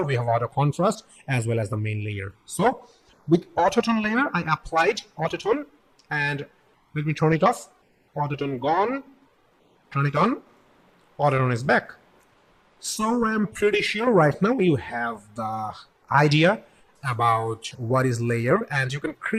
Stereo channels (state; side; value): identical; both; correlation 1.00